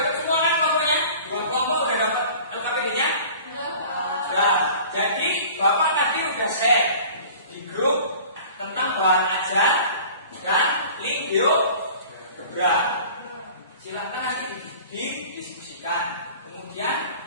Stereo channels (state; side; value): inverted; both; correlation -0.44